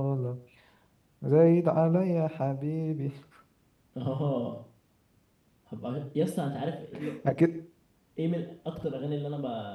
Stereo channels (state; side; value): identical; both; correlation 1.00